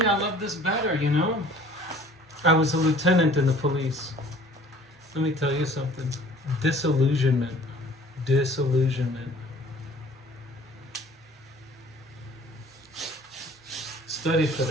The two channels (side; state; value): both; normal; correlation 0.51